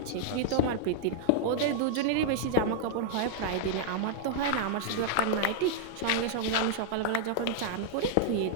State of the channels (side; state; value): both; different; correlation -0.01